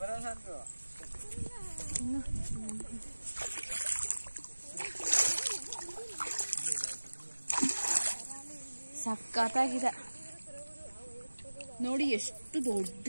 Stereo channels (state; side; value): inverted; both; correlation -1.00